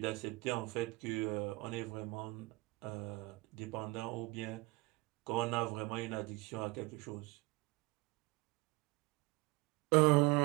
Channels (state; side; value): quieter; left; 22.9 dB